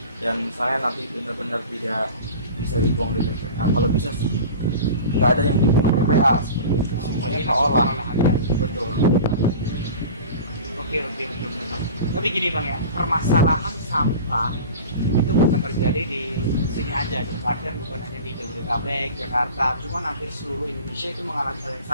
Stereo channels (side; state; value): both; inverted; correlation -0.37